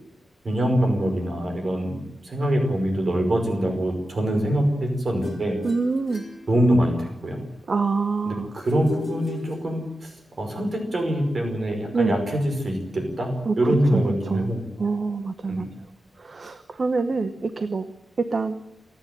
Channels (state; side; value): normal; both; correlation 0.91